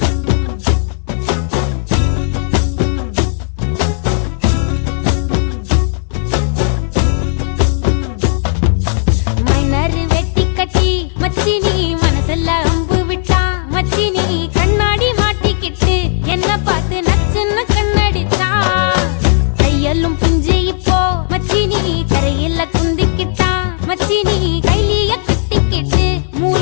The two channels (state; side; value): silent; right; digital silence